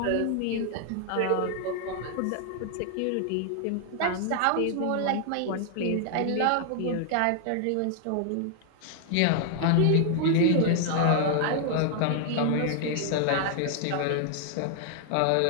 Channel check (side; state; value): both; different; correlation 0.00